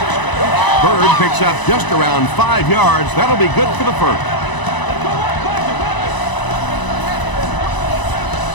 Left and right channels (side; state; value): right; late; 1.0 ms